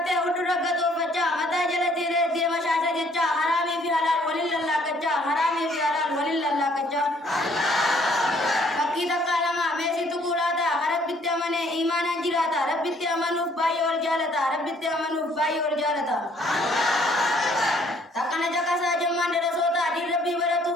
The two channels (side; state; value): both; normal; correlation 0.62